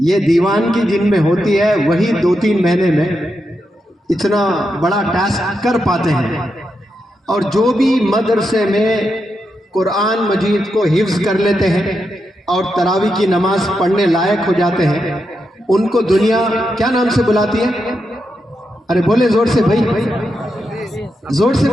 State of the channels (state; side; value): normal; both; correlation 0.85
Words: یہ دیوان کی جن میں ہوتی ہے وہی 2-3 مہینے میں اتنا بڑا ٹاسک کر پاتے ہیں۔ اور جو بھی مدرسے میں قرآن مجید کو حفظ کر لیتے ہیں اور تراویح کی نماز پڑھنے لائق ہو جاتے ہیں، ان کو دنیا کیا نام سے بلاتی ہے؟ ارے بولے زور سے بھائی، زور سے